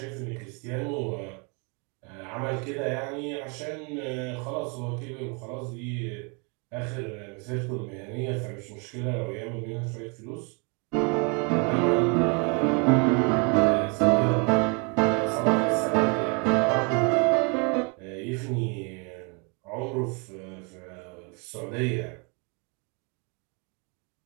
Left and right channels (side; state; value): left; quieter; 33.6 dB